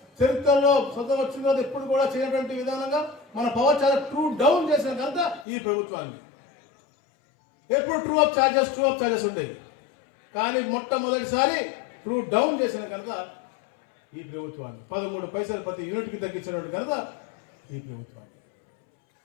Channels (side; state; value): right; drops out; at 5.5 s